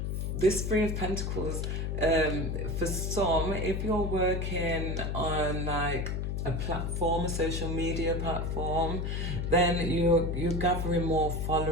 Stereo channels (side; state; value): left; noise; hum, 1 dB below the sound